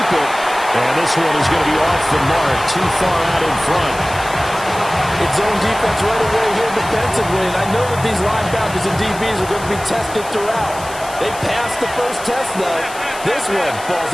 it. And this one is going to be off the mark. Too far out in front. It's zone defense right away here defensively. And I know that these linebackers and DBs are going to be tested throughout. They passed the first test, though. This one falls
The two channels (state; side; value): noise; left; hiss, 15 dB below the sound